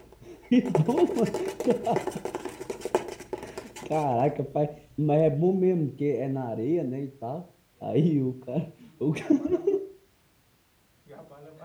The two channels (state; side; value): identical; both; correlation 1.00